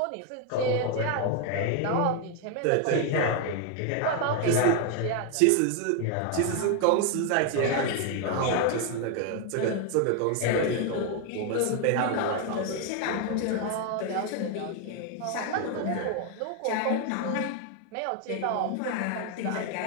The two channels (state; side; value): different; both; correlation 0.01